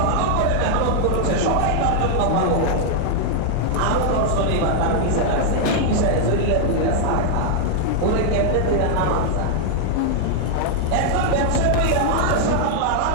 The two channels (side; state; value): both; different; correlation 0.00